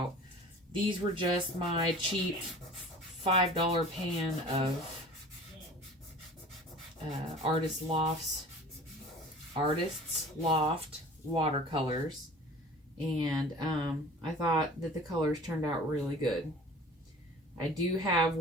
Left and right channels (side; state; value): both; normal; correlation 0.43